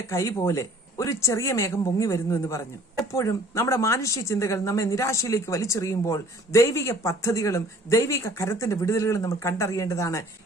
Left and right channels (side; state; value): both; normal; correlation 0.53